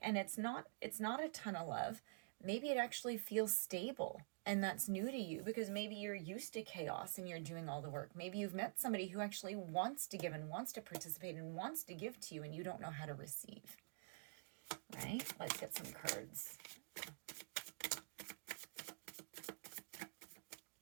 and it's not a ton of love. Maybe it actually feels stable, and that's new to you because maybe you're used to chaos and you're doing all the work. Maybe you've met somebody who actually wants to give and wants to participate and wants to give to you, and you don't know how to receive. Right? Let's get some cards.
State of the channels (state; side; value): silent; left; digital silence